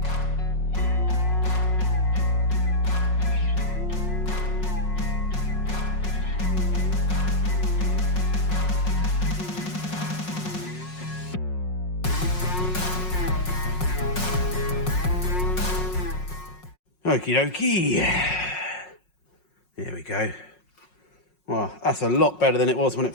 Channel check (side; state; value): right; late; 5.5 ms